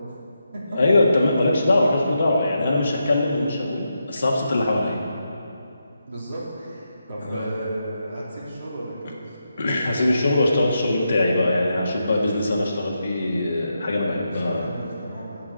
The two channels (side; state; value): both; inverted; correlation -0.85